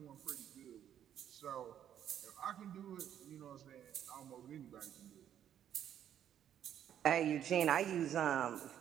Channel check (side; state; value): left; quieter; 10.0 dB